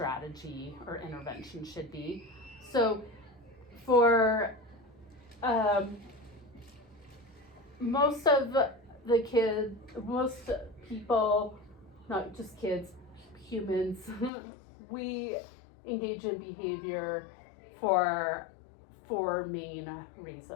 or intervention should be. So for most people, not just kids, humans, we engage in behavior for four main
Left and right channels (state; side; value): drops out; right; at 14.3 s